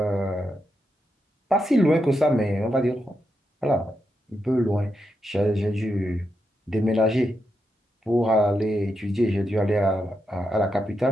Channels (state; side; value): normal; both; correlation 0.84